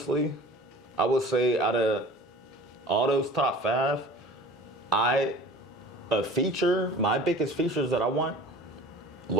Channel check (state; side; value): normal; both; correlation 0.43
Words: I would say out of all those top 5, my biggest features that I want,